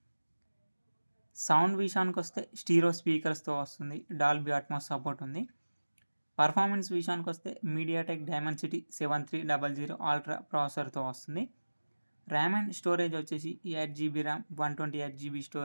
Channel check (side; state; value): both; inverted; correlation -1.00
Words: సౌండ్ విషయానికి వస్తే స్టీరో స్పీకర్స్తో వస్తుంది. డాల్బీ అట్మాస్ సపోర్ట్ ఉంది. పర్ఫార్మెన్స్ విషయానికి వస్తే మీడియాటెక్ డైమెన్సిటీ 7300 అల్ట్రా ప్రాసెసర్తో వస్తుంది. ర్యామ్ అండ్ స్టోరేజ్ వచ్చేసి 8GB ర్యామ్ 128GB